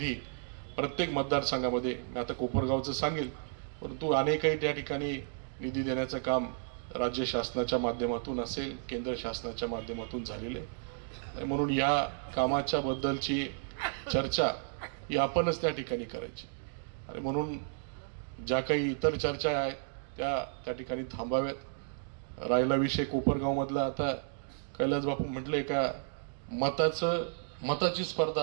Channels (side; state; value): left; silent; digital silence